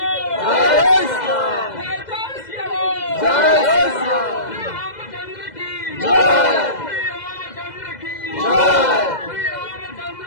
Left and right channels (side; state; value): right; late; 2.0 ms